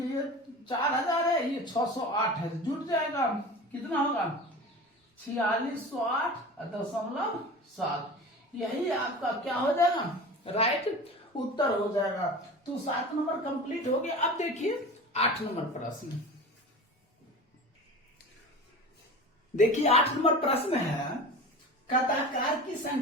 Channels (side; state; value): both; normal; correlation 0.34